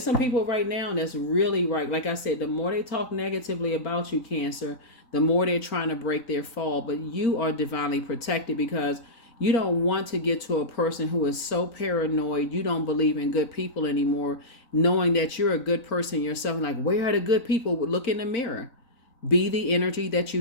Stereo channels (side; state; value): right; late; 4.0 ms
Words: some people right now that's really right. Like I said, the more they talk negatively about you, Cancer, the more they're trying to break their fall. But you are divinely protected, because you don't want to get to a person who is so paranoid, you don't believe in good people anymore, knowing that you're a good person yourself. And like, where are the good people? Look in the mirror. Be the energy that